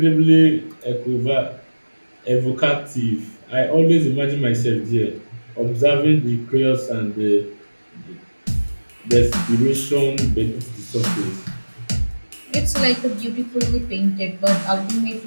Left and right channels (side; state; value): both; inverted; correlation -1.00